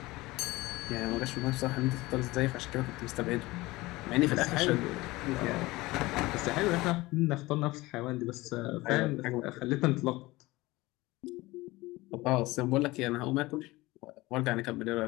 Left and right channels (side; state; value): right; quieter; 20.3 dB